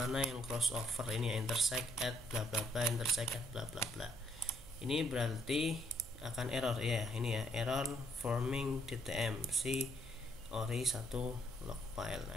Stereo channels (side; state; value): right; noise; hum, 17 dB below the sound